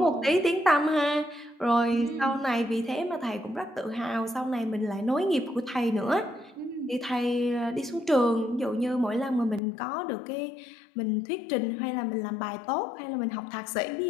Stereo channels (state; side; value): drops out; right; at 9.6 s